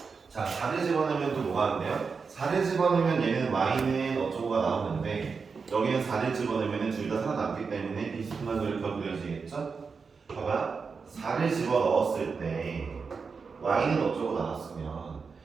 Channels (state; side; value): quieter; left; 5.2 dB